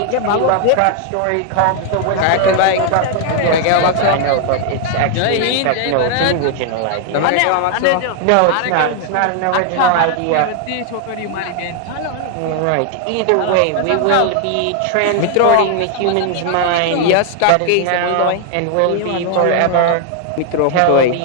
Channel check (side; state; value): both; different; correlation 0.00